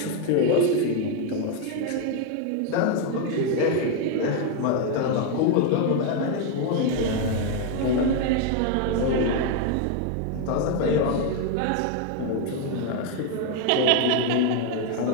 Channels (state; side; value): different; both; correlation 0.01